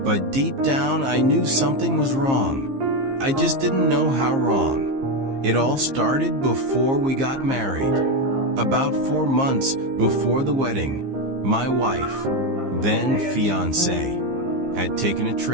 But deep down, I knew something was wrong. I just didn't know how wrong. It all started before we got married. About 4 months before the wedding, my wife, then fiancé, had taken a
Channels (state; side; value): late; left; 15 ms